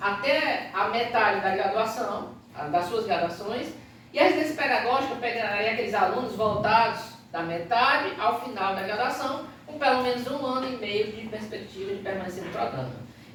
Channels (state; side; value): identical; both; correlation 1.00